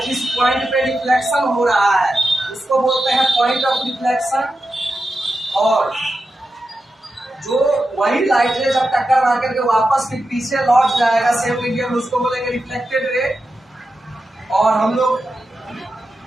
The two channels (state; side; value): normal; both; correlation 0.90